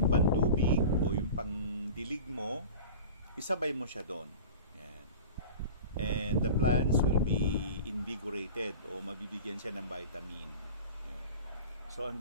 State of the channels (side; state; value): both; inverted; correlation -0.35